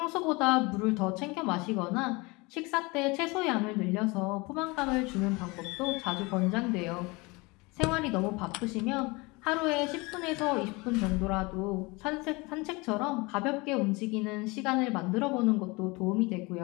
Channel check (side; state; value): right; quieter; 25.3 dB